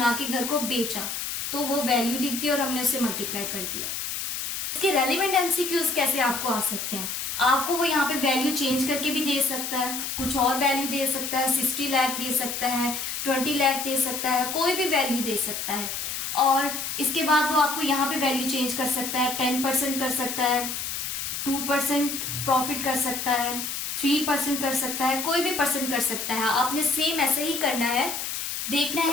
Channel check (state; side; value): noise; left; hiss, 4 dB below the sound